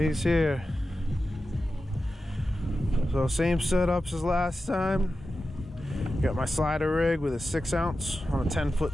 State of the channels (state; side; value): normal; both; correlation 0.92